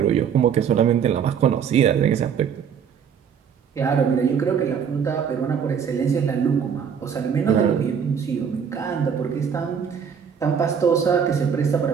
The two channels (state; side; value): quieter; left; 7.4 dB